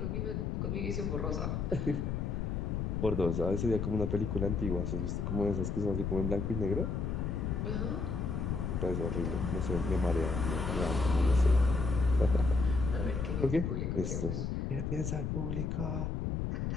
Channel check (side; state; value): left; noise; rumble, 1 dB below the sound